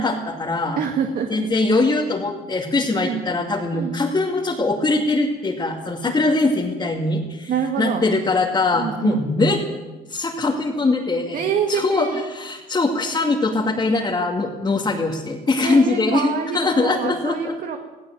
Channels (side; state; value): both; normal; correlation 0.60